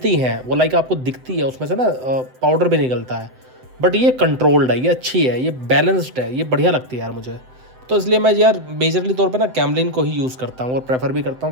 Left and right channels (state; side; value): late; left; 7.8 ms